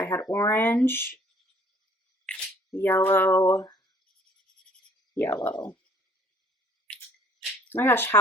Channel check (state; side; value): normal; both; correlation 0.58